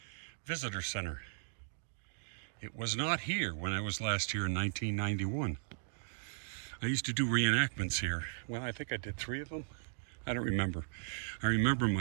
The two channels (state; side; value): silent; left; digital silence